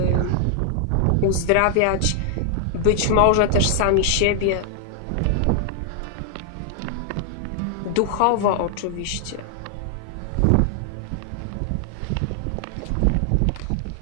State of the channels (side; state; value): both; different; correlation 0.00